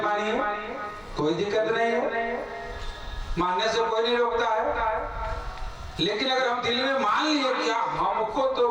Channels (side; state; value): both; identical; correlation 1.00